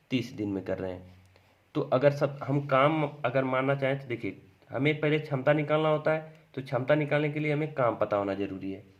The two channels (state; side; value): identical; both; correlation 1.00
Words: 30 दिन में कर रहे हैं। तो अगर सब हम काम अगर मानना चाहें तो देखिए हमें पहले क्षमता निकालना होता है। तो क्षमता निकालने के लिए हमें काम पता होना जरूरी है।